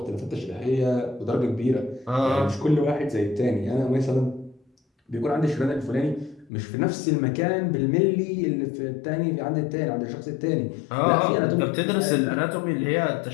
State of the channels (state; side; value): drops out; right; at 6.5 s